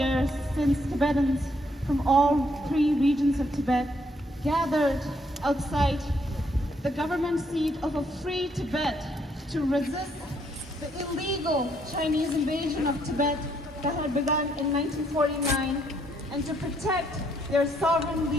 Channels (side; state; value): both; normal; correlation 0.71